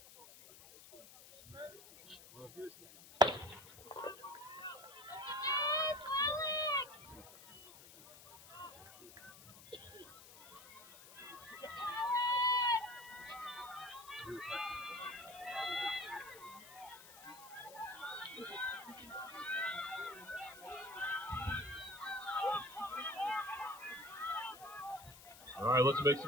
Well, if he was. All right, let's make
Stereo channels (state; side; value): noise; left; hiss, 18 dB below the sound